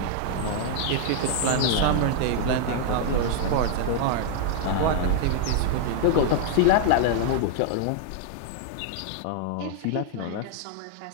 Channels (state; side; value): different; both; correlation 0.00